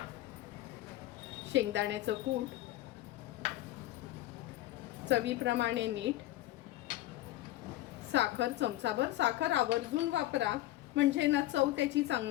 शेंगदाण्याचं कूट, चवीप्रमाणे मीठ, साखर चमचाभर, साखर आवर्जून वापरा म्हणजे ना चव त्याची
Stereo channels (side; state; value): right; quieter; 15.8 dB